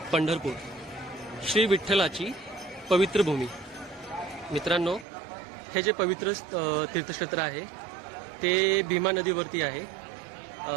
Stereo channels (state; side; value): drops out; left; at 5.1 s